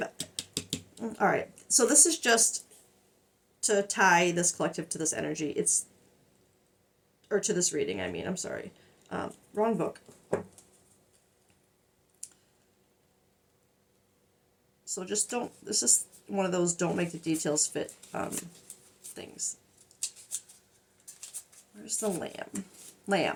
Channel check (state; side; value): identical; both; correlation 1.00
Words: All right. So this is just to tie this collective to this energy. Or to this reading, I mean. I'm sorry. Wrong book. So just don't, this is one of those don't make the details fit things. Where's the lamb?